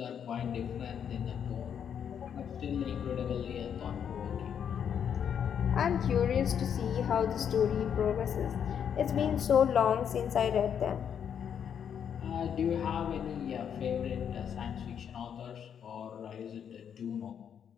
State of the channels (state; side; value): quieter; right; 8.2 dB